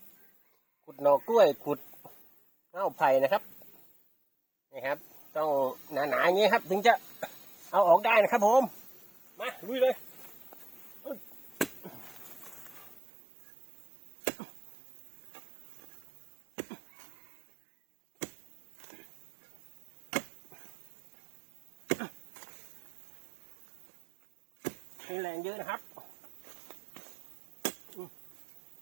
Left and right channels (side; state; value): left; drops out; at 13.0 s